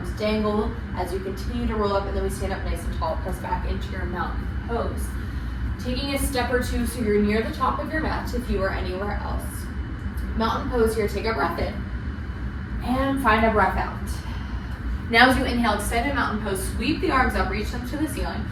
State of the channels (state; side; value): identical; both; correlation 1.00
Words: dangle as you continue to roll up, and then we stand up nice and tall, press back into your mountain pose. Taking a step or two so you're near the top of your mat if you are anywhere else. Mountain pose here, take a breath in and find a breath out. Now as you inhale, extend a mountain pose, sweep the arms up, reach them to the ceiling.